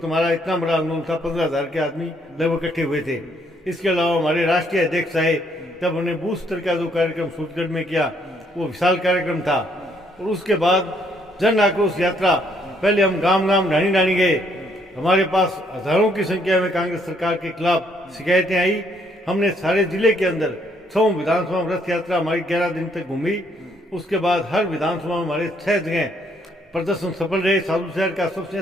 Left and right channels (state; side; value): normal; both; correlation 0.69